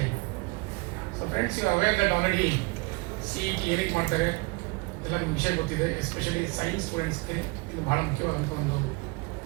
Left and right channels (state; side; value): quieter; left; 27.3 dB